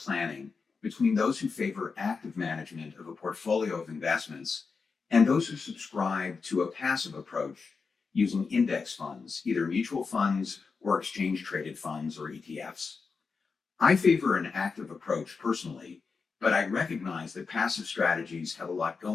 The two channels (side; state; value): right; quieter; 4.9 dB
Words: between those who favor active management of a portfolio of investments and those who subscribe to a passive approach using index funds, either mutual funds or exchange-traded funds or ETFs. I favor an active approach personally, but I recognize that passive strategies have a lot